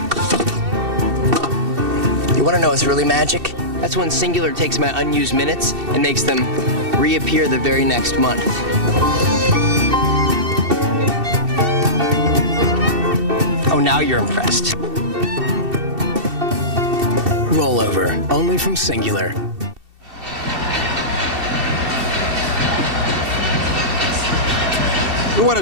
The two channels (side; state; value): left; late; 2.7 ms